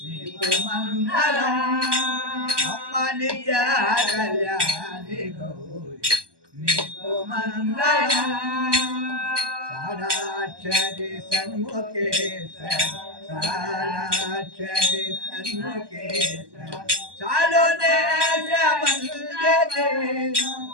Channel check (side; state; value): left; late; 1.2 ms